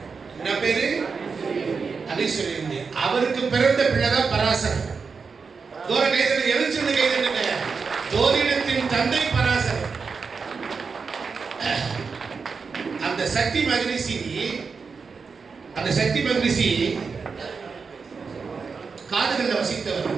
என்ன பேரு? அதிசுரியந்தி. அவருக்கு பிறந்த பிள்ளைதான் பராசரன். தூர கைதல் எழுச்சிருந்து கைதலுங்க. ஜோதிடத்தின் தந்தை பராசரன். அந்த சக்தி மகரிஷி காதுகள்ல வசித்தவர்.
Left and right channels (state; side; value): quieter; left; 5.2 dB